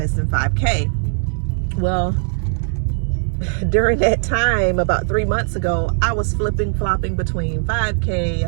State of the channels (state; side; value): silent; left; digital silence